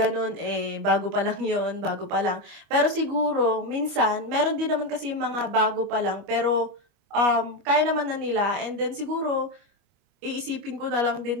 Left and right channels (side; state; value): left; late; 25 ms